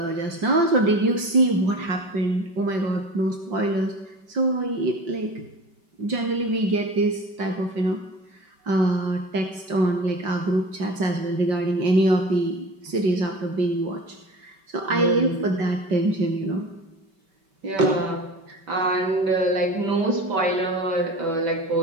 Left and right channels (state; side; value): late; left; 5.2 ms